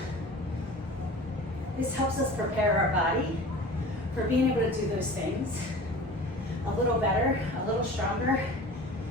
This helps us prepare our body for being able to do those things a little better, a little stronger,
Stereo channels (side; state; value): both; normal; correlation 0.39